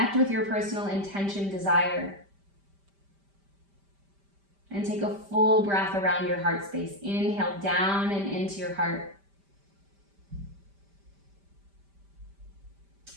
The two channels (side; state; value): left; late; 5.1 ms